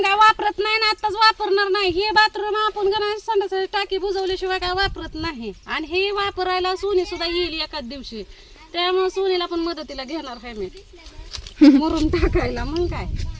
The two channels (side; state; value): both; identical; correlation 1.00